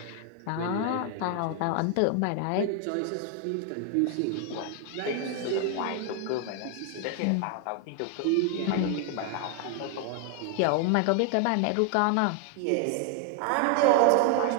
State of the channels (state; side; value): different; both; correlation 0.01